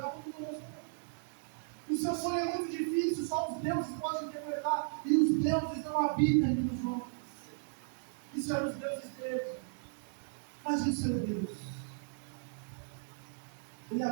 o seu sonho é muito difícil, só os deuses podem interpretar, e os deuses não habitam entre os homens. Isso eram os deuses deles. Mas e o seu Deus? Ele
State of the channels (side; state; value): left; silent; digital silence